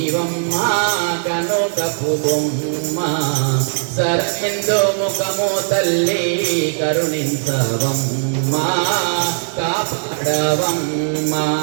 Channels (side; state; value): left; silent; digital silence